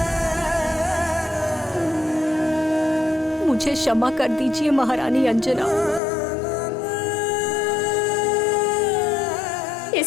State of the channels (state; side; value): drops out; right; at 6.0 s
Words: मुझे क्षमा कर दीजिए महारानी अंजना,